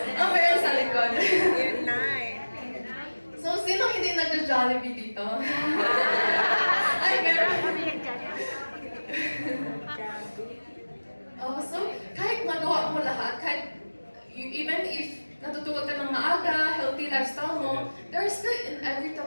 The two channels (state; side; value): inverted; both; correlation -1.00